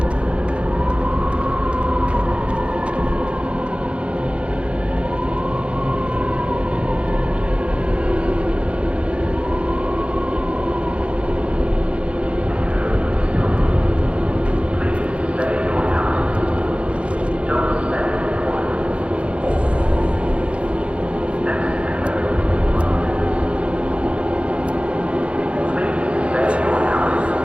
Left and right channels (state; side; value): late; left; 0.059 ms